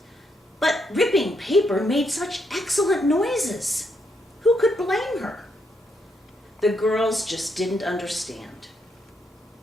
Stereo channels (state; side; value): normal; both; correlation 0.77